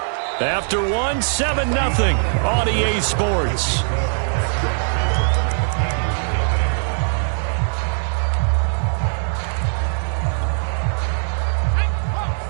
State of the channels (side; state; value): left; silent; digital silence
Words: After 1, 7-0 on EA Sports.